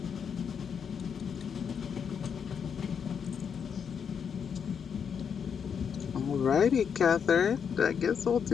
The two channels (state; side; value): quieter; right; 7.1 dB